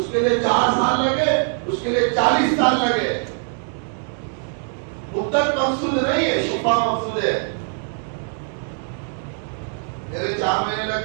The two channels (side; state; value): left; silent; 57 dB below the other